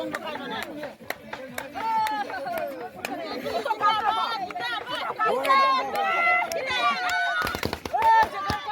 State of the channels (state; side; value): identical; both; correlation 1.00